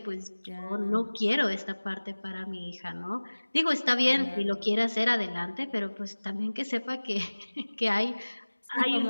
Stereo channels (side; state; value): both; inverted; correlation -1.00